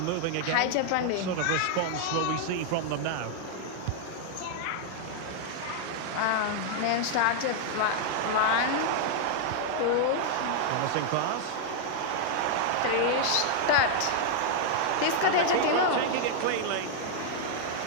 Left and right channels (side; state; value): both; different; correlation -0.01